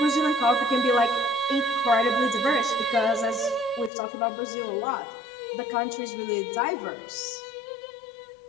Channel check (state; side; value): drops out; right; at 3.9 s